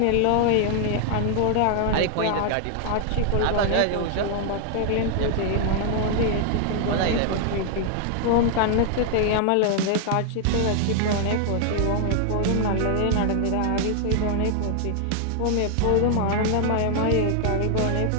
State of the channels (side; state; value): both; different; correlation 0.00